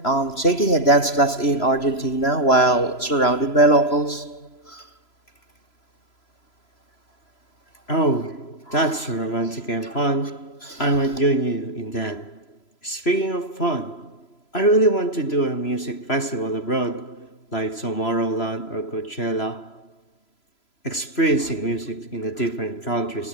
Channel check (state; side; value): late; right; 3.0 ms